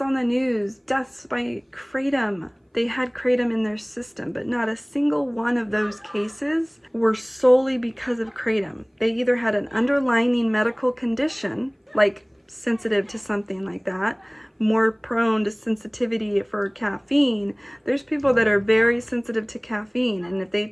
on the news, deaths by kratom. They had kratom in their system, but not a single one of those cases were solely because of kratom. They either had an underlying medical condition, like sensitive to something like that, more prone to sensitivity for caffeine. There's people that are very sensitive to caffeine, and if they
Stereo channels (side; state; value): both; identical; correlation 1.00